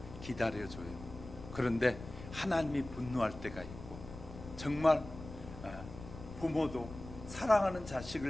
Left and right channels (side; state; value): left; noise; rumble, 13 dB below the sound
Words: 기다려줘요. 그런데 하나님이 분노할 때가 있고, 정말 부모도 사랑하는